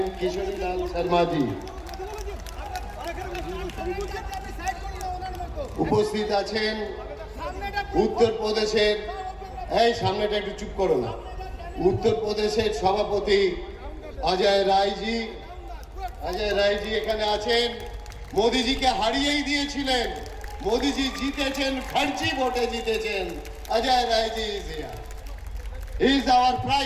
কিশোরীলাল শর্মাজি। উপস্থিত আছেন উত্তরপ্রদেশের, এই সামনেটা একটু চুপ করো না, উত্তরপ্রদেশের সভাপতি অজয় রায়জি। অজয় রায়জি এখানে আছেন। মোদিজিকে হারিয়েই দিয়েছিলেন, মোদিজি জিতেছেন, ফার্জি ভোটে জিতেছেন। অজয় রায়জি is here, he is our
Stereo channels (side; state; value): both; identical; correlation 1.00